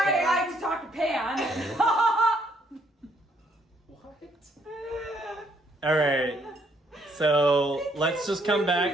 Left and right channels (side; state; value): both; normal; correlation 0.69